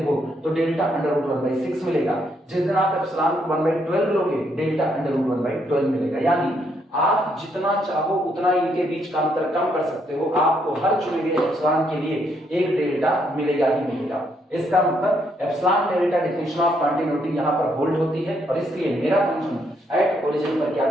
हो तो डेल्टा अंडर रूट 1/6 मिलेगा, जिस दिन आप एप्सिलॉन को 1/12 लोगे डेल्टा अंडर रूट 1/12 मिलेगा। यानी आप जितना चाहो उतना इनके बीच का अंतर कम कर सकते हो, आपको हर चुने गए एप्सिलॉन के लिए एक डेल्टा मिलेगा ही मिलेगा। इसका मतलब epsilon delta definition of continuity यहां पर होल्ड होती है, और इसलिए मेरा फंक्शन एट ओरिजिन पर क्या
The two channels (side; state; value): both; normal; correlation 0.73